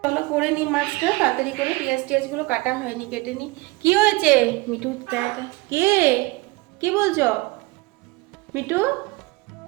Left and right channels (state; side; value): quieter; left; 23.3 dB